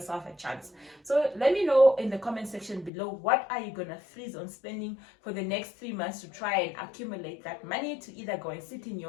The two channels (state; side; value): drops out; right; at 2.9 s